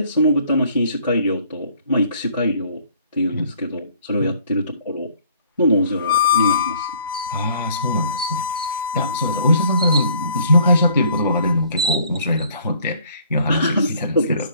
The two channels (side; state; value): both; inverted; correlation -0.59